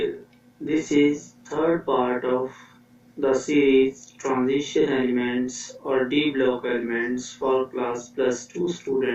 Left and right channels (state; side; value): identical; both; correlation 1.00